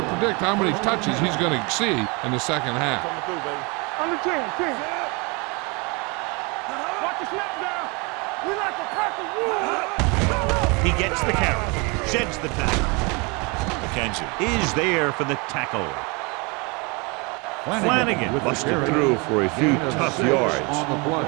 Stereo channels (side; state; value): left; quieter; 29.4 dB